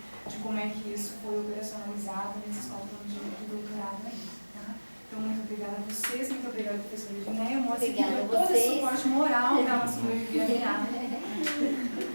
de como é que isso foi operacionalizado nesses 4 anos de doutorado aí. Então, muito obrigada a vocês, muito obrigada, professora Edneia. Mostra que deu todo o suporte moral para ela sobreviver a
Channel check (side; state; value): both; inverted; correlation -1.00